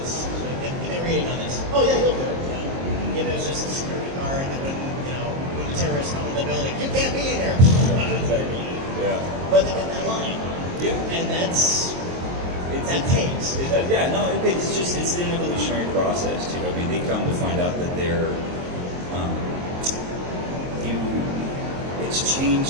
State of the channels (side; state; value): left; late; 22 ms